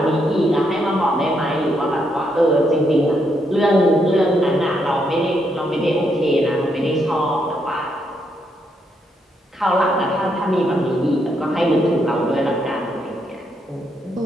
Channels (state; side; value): normal; both; correlation 0.77